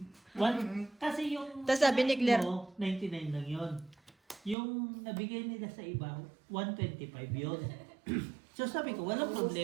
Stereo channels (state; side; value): drops out; left; at 4.5 s